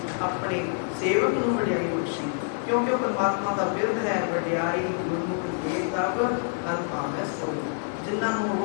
ਆਪਣੇ ਸੇਵਕ ਨੂੰ ਵਡਿਆਈ ਬਖਸ਼ੀ, ਕਿਉਂਕਿ ਉਹ ਪਰਮਾਤਮਾ ਦਾ ਬਿਰਧ ਹੈ। ਵਡਿਆਈ ਗੁਰਮੁਖ ਦੇ ਤਬ ਹਰ ਭਾਵੈ ਸੋਈ। ਜਿਨ੍ਹਾਂ ਨੂੰ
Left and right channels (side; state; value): right; silent; 60 dB below the other